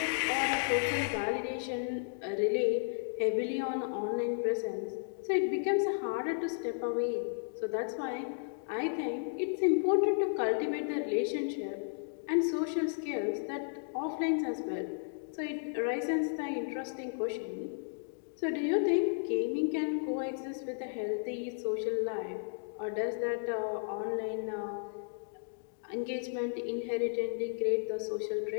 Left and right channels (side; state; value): right; silent; digital silence